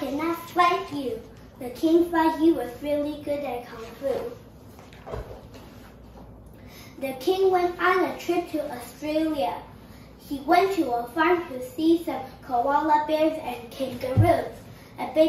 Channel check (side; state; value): both; identical; correlation 1.00